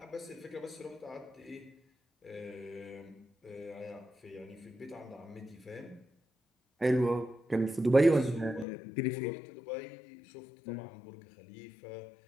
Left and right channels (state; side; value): drops out; right; at 8.7 s